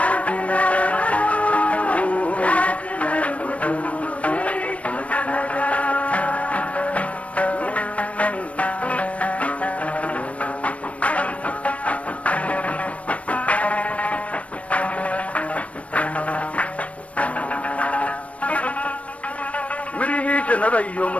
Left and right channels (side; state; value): right; late; 0.064 ms